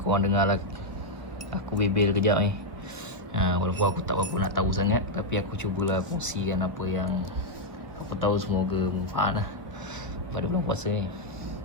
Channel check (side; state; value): right; late; 1.2 ms